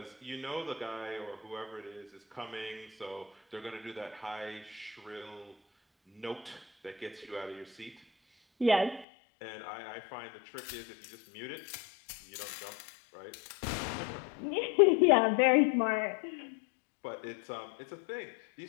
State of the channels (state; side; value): drops out; right; at 9.1 s